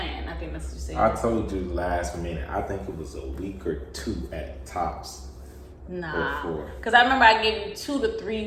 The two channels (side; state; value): both; identical; correlation 1.00